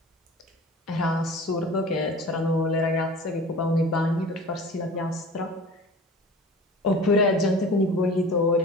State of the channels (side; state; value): both; normal; correlation 0.40